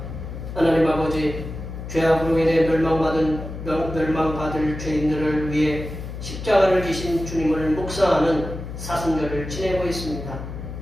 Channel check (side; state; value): left; noise; hum, 9 dB below the sound